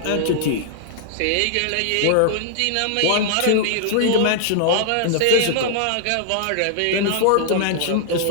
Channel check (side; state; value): both; different; correlation -0.01